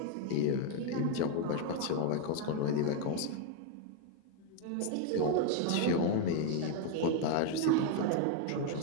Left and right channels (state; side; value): different; both; correlation 0.01